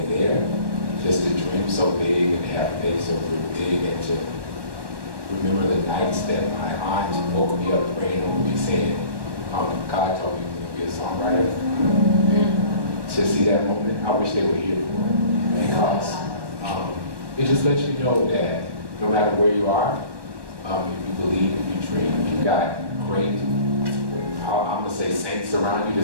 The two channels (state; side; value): late; left; 1.1 ms